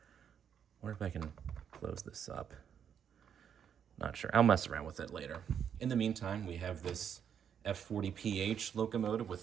wonder if I can close this up. Not sure. I'll mess around with it later. In the meantime, we have this F40PH locomotive with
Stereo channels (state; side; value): quieter; left; 8.2 dB